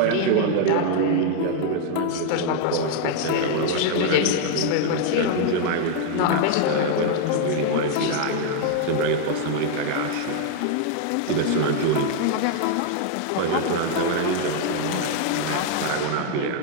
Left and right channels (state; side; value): different; both; correlation 0.00